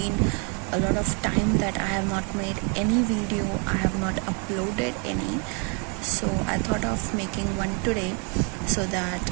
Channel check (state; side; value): quieter; left; 35.7 dB